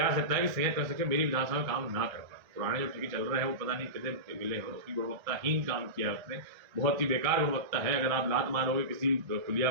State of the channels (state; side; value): late; left; 1.3 ms